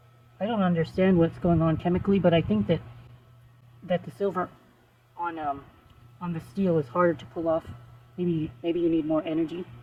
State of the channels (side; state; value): both; identical; correlation 1.00